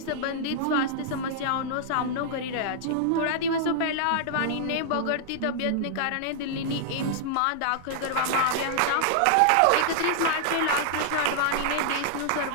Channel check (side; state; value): both; different; correlation -0.01